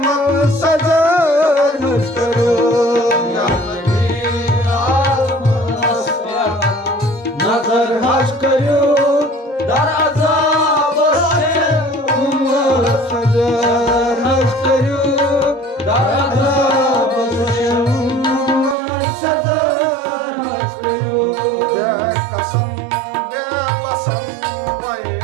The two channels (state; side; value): drops out; left; at 18.8 s